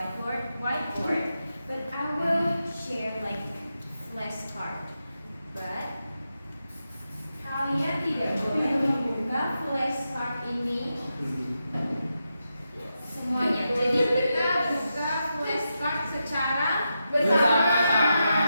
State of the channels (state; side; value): inverted; both; correlation -0.87